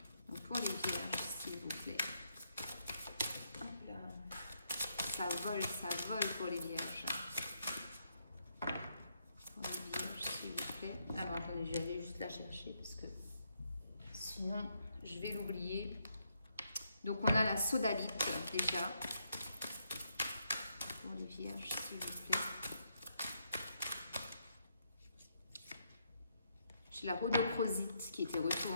Donc pour les vierges, s'il vous plaît. Hop là. Ça vole pour les vierges. Pour les vierges, s'il vous plaît. Alors attendez, je vais aller juste la chercher parce que sinon je vais l'oublier. Donc on a la sodalite déjà. Pour les vierges, s'il vous plaît. J'ai la rhodochrosite qui était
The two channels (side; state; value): both; inverted; correlation -0.77